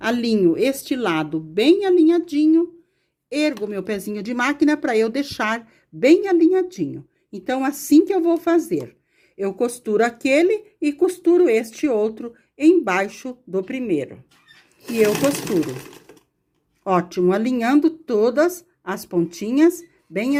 este lado bem alinhadinho, ergo meu pezinho de máquina para eu deixar bem alinhadinho. Então, assim que eu vou fazer, eu costuro aquele e costuro este outro embaixo do primeiro. E eu costuro. Ótimo, alinhando todas as pontinhas bem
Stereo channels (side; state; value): both; identical; correlation 1.00